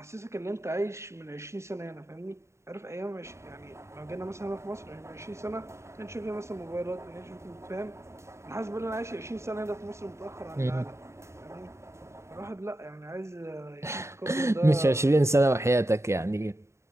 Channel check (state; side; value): late; left; 0.14 ms